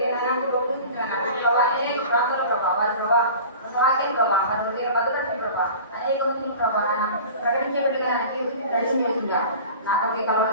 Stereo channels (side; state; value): both; inverted; correlation -0.39